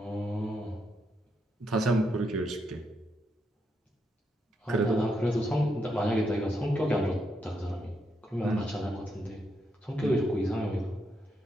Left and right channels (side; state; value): both; normal; correlation 0.80